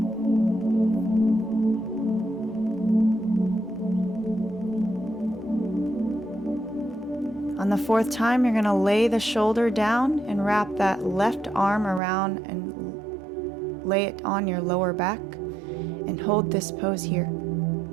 On the 4th time, you're going to lay the shoulder down and wrap that left arm around and lay it on your lower back and hold this pose here.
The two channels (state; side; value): drops out; left; at 12.0 s